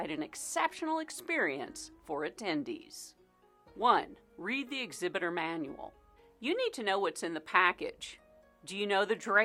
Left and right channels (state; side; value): identical; both; correlation 1.00